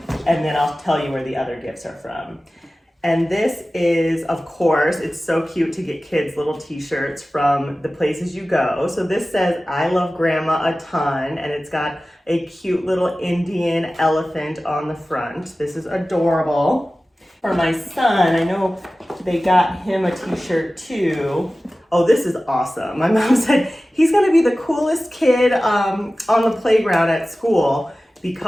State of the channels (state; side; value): normal; both; correlation 0.96